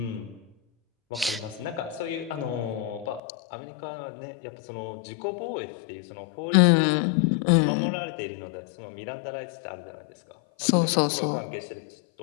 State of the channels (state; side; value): drops out; right; at 3.2 s